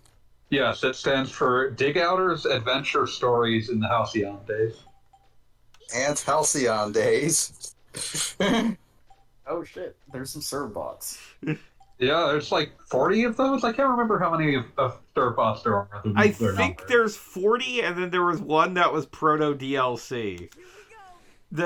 Yes, it stands for Dig Outers Adventure Stories in the Halcyon Days. And Halcyon Days. Oh shit, there's some serve bots. Yeah, there's like 40 of those. I can't remember how many of Starbots there are. I They're think numbered. there's 40, and then there was one that was proto DLC.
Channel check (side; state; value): both; identical; correlation 1.00